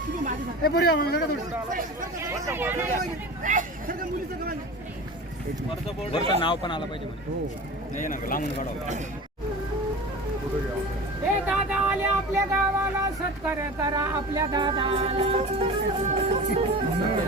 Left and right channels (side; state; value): both; normal; correlation 0.34